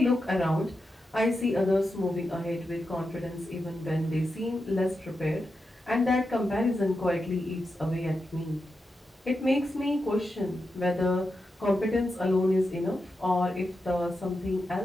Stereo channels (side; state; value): both; normal; correlation 0.88